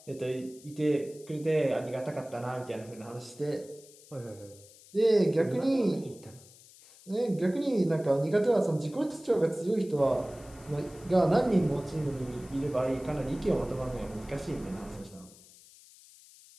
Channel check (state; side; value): noise; left; hiss, 23 dB below the sound